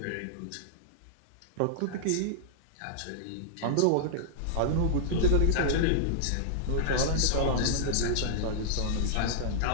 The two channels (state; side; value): different; both; correlation -0.01